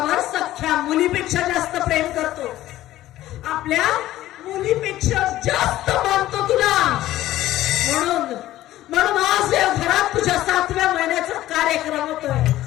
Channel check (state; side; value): quieter; right; 14.7 dB